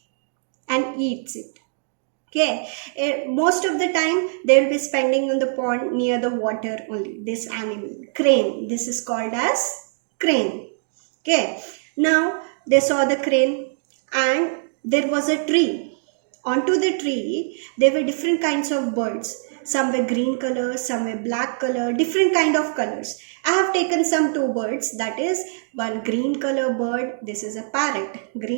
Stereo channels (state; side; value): silent; left; digital silence